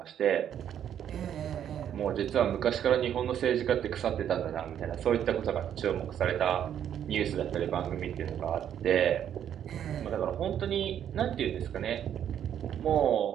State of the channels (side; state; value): left; quieter; 9.7 dB